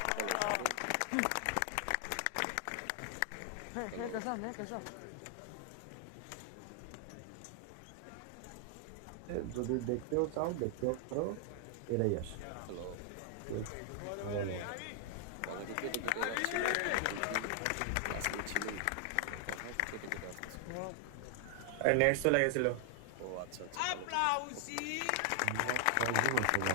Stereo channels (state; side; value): different; both; correlation 0.00